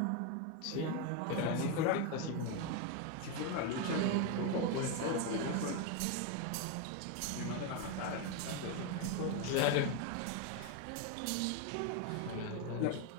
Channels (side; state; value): both; different; correlation 0.02